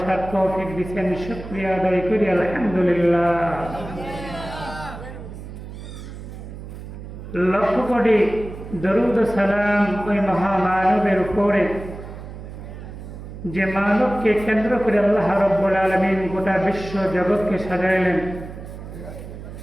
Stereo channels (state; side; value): noise; right; hum, 12 dB below the sound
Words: তৌফিক দিয়েছেন। শুকরিয়া আদায় করি আলহামদুলিল্লাহ। লক্ষ কোটি দরুদ ও সালাম ওই মহামানবের উপরে, যে মানবকে কেন্দ্র করে আল্লাহ রাব্বুল আলামিন গোটা বিশ্ব জগৎকে সাজাইলেন,